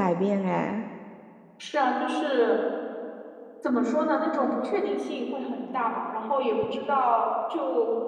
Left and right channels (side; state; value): both; identical; correlation 1.00